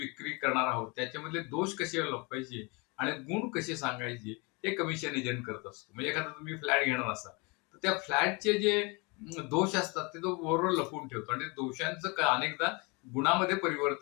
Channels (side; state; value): right; quieter; 28.9 dB